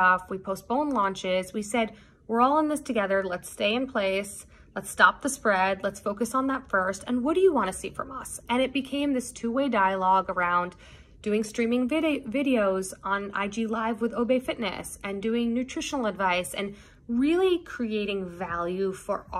We postponed launches. We said, we're all in this together. Let's stay in place. Let's stop the spread. Let's focus on that first. And what do you want to see from us? And it became this two-way dialogue around doing streaming videos on IG Live with Obey Fitness and doing nutritional advice and really creating value for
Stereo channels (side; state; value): both; identical; correlation 1.00